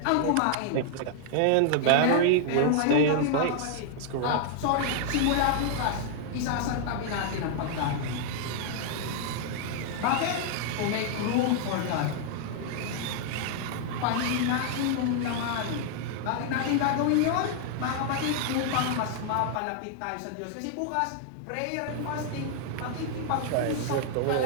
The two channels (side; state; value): both; different; correlation -0.01